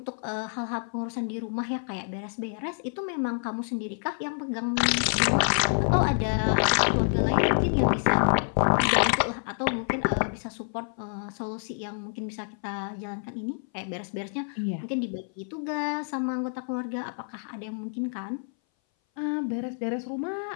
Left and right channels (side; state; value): right; silent; 58 dB below the other